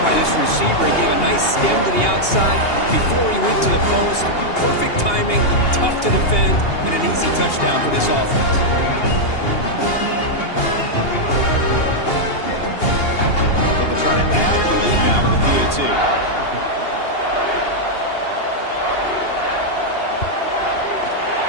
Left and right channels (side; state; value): right; late; 2.8 ms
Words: by this receiver. He gave a nice stem to the outside before he went to the post. Perfect timing, tough to defend, and an easy touchdown for this offense. They'll try to add the lead now with the PAT.